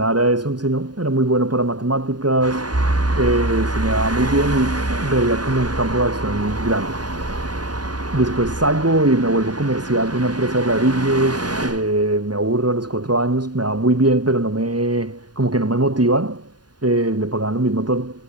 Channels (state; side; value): late; left; 0.70 ms